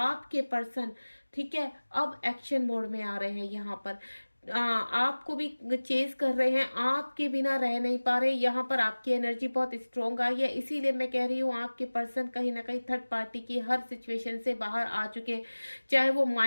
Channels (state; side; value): inverted; both; correlation -1.00